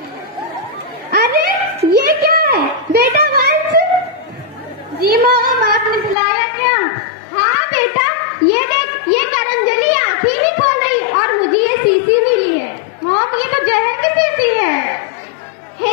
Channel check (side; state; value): right; drops out; at 6.2 s